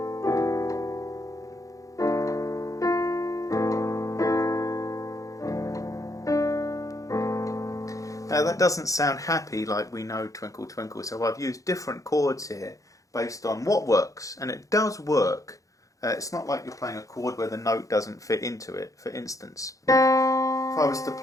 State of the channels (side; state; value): right; late; 0.16 ms